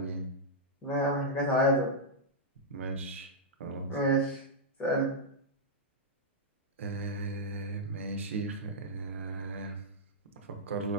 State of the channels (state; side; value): normal; both; correlation -0.09